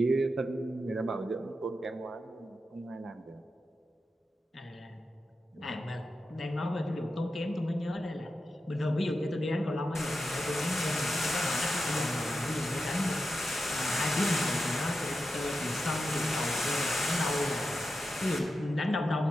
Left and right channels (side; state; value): both; normal; correlation 0.90